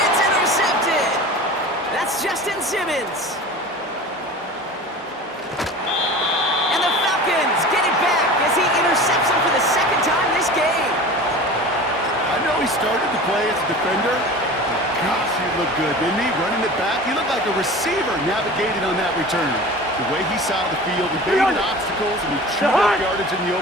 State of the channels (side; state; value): both; normal; correlation 0.37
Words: It's intercepted. That's Justin Simmons. And the Falcons get it back as he intercepts him for the 2nd time this game. I know he started to play as a defender. But gosh, he looked good, didn't he? Running it back, he looked like a receiver navigating on that return. The way he saw the field, he baited obstacles, and he chewed up yardage in the